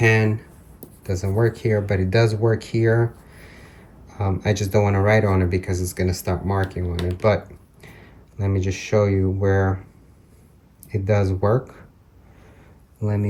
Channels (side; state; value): both; identical; correlation 1.00